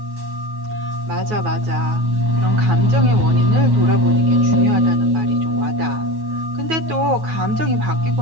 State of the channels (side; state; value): left; late; 9.4 ms